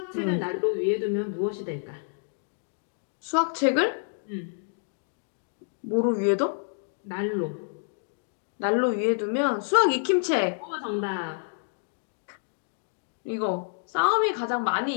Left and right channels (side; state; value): right; silent; digital silence